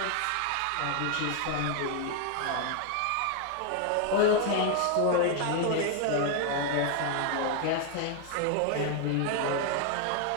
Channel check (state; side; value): different; both; correlation 0.00